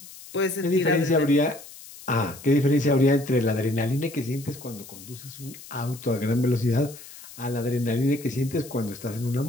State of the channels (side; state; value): left; noise; hiss, 17 dB below the sound